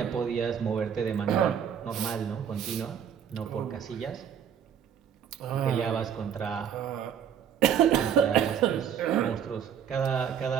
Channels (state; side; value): quieter; left; 8.4 dB